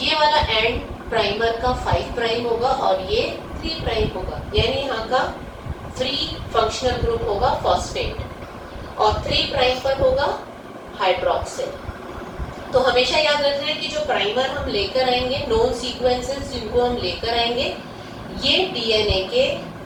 वाला एंड प्राइमर का 5 प्राइम होगा और ये 3 प्राइम होगा, यानी यहाँ का फ्री फंक्शनल ग्रुप होगा फॉस्फेट और 3 प्राइम पर होगा हाइड्रोक्सिल। तो हमेशा याद रखना है कि जो प्राइमर हम लेकर आएंगे, नोन सीक्वेंसेस जिनको हम लेकर आएंगे, ये डीएनए के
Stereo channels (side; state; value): both; identical; correlation 1.00